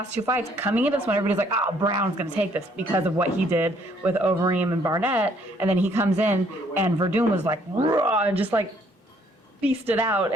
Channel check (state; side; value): normal; both; correlation 0.65